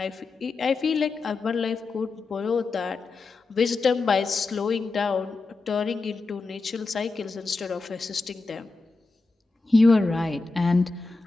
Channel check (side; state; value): right; quieter; 3.8 dB